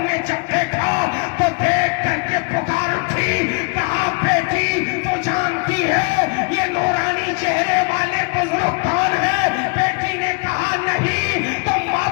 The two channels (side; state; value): right; quieter; 33.6 dB